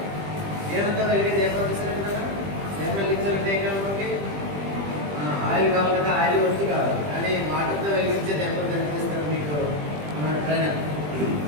ఏమంతా వెలిగి దీపం తీసినట్టు కదా, దీపం వెలిగించాలంటే ఏం కావాలి? ఆయిల్ కావాలి కదా, ఆయిల్ వస్తు కావాలి. కానీ వాటర్తో వెలిగించే దీపం కనిపిస్తారు మీకు మన ట్రైనర్.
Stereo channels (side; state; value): left; late; 20 ms